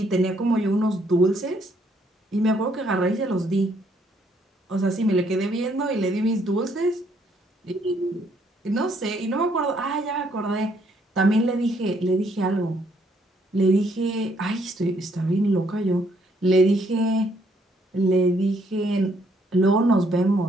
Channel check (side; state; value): both; normal; correlation 0.69